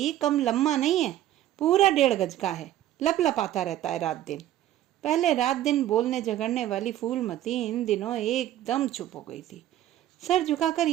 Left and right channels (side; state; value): left; quieter; 13.0 dB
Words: कम लम्मा नहीं है, पूरा 1.5 गज का है, लपलपाता रहता है रात दिन। पहले रात दिन बोलने झगड़ने वाली फूलमती इन दिनों एकदम चुप हो गई थी। सर झुकाकर